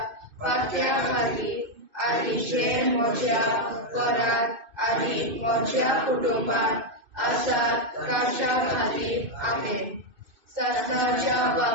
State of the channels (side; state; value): left; late; 2.6 ms